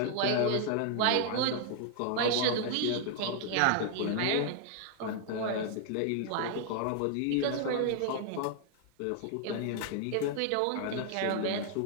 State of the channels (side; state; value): both; different; correlation 0.00